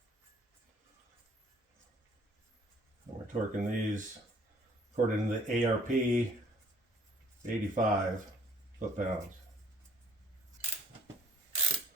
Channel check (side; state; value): both; normal; correlation 0.56